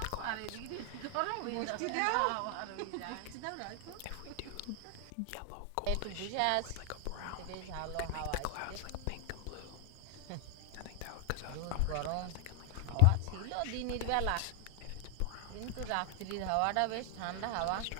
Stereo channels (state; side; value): different; both; correlation 0.00